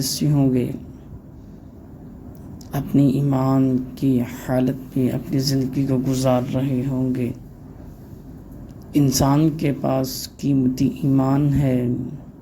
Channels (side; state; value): both; identical; correlation 1.00